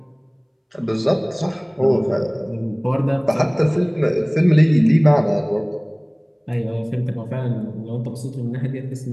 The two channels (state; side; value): identical; both; correlation 1.00